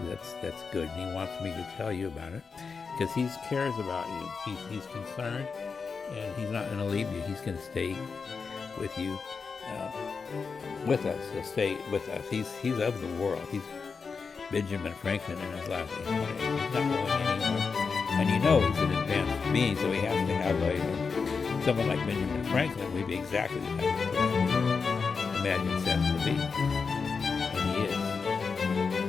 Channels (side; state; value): right; quieter; 5.1 dB